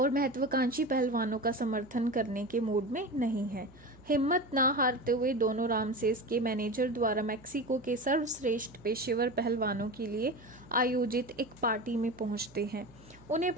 महत्वाकांक्षी पहलवानों का समर्थन करने के मूड में नहीं है। हिम्मत ना हारते हुए दोनों रामसेस के मैनेजर द्वारा मैक्सिको के सर्वश्रेष्ठ पेशेवर पहलवानों के लिए आयोजित एक पार्टी में पहुंचते हैं। उन्हें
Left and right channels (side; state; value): right; noise; hum, 24 dB below the sound